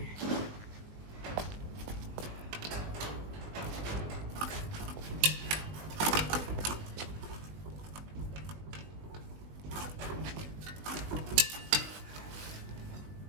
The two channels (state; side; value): late; left; 20 ms